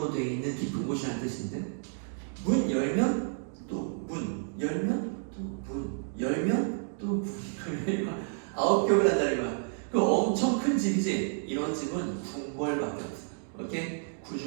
되어 있는 깊은 곳이라는 뜻인데 문 열면 또 문 열면 또 문 열면 또 문 열면 9겹을 한다는 거야. 그 엄청 큰 집이지. 이런 집은 궁궐밖에 없어요. 오케이?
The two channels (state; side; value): silent; left; digital silence